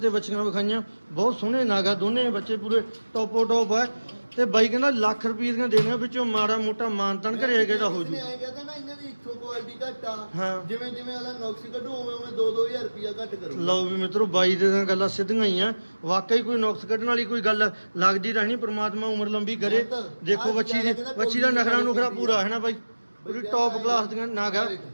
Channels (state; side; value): inverted; both; correlation -1.00